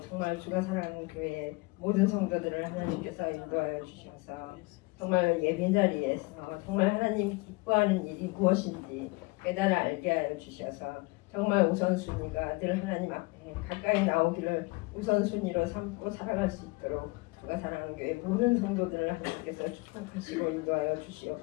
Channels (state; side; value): quieter; right; 25.3 dB